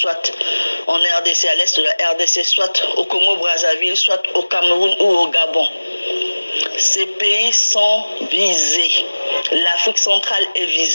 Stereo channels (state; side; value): inverted; both; correlation -1.00